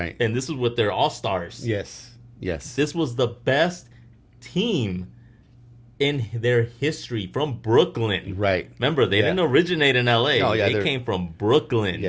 And this was with their all-stars. Yes. Yes. This was the best team in their history from Brooklyn. Right. Remember, they Yeah. didn't originate in LA. Oh, yeah, they they're- came from Brooklyn.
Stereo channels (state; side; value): identical; both; correlation 1.00